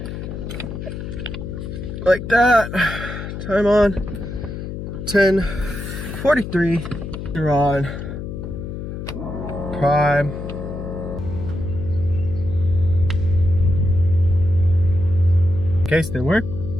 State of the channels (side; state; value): left; noise; hum, 7 dB below the sound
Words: Like that. Time on 10:43. You're on prime. Case didn't work.